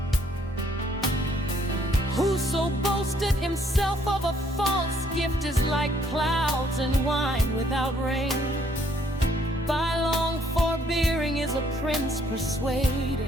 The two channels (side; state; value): both; normal; correlation 0.66